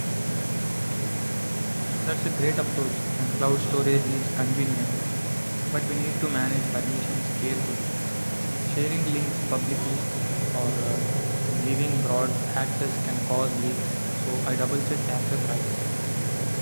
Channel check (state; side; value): inverted; both; correlation -1.00